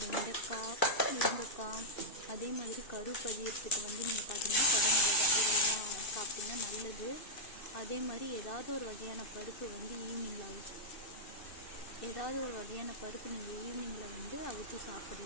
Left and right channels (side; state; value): right; late; 2.6 ms